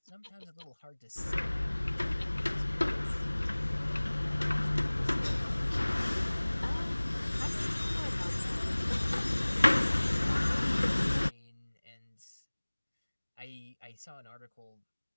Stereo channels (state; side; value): inverted; both; correlation -1.00